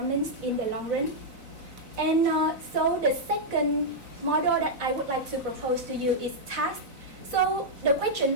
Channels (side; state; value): left; late; 4.0 ms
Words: in the long run. And so the second model that I would like to propose to you is task. So the question